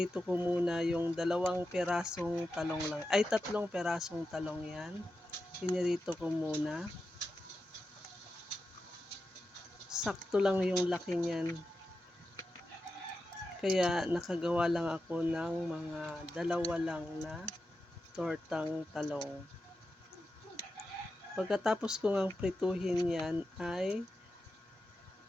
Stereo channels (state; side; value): normal; both; correlation 0.90